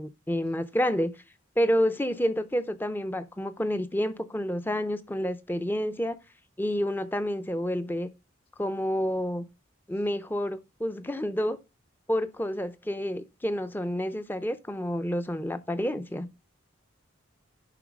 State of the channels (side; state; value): both; normal; correlation 0.91